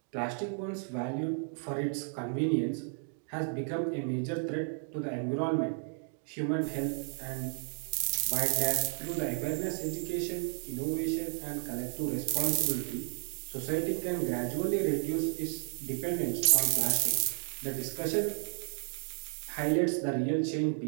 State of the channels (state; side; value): silent; left; 56 dB below the other